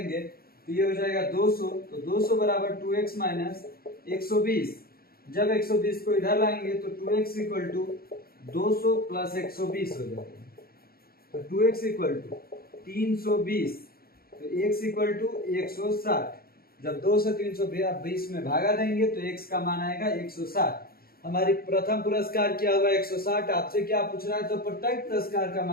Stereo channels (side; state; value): right; late; 0.44 ms